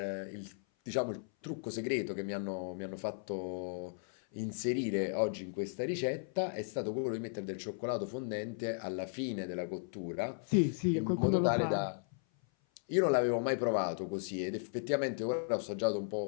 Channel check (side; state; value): right; silent; 54 dB below the other